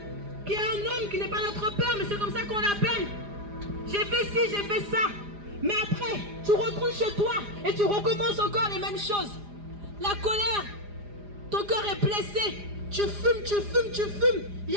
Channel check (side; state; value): left; late; 4.9 ms